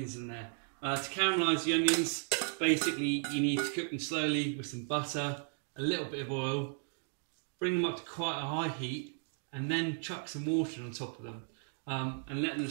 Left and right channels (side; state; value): left; silent; 54 dB below the other